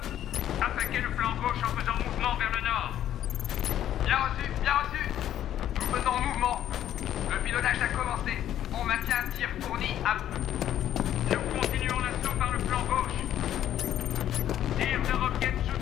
Attaquez le flanc gauche en faisant mouvement vers le nord. Bien reçu, bien reçu. Nous faisons mouvement. Le pilonnage a commencé. On maintient un tir fourni à bout. Nous continuons l'assaut par le flanc gauche. Tir de roquettes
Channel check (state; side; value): quieter; right; 11.4 dB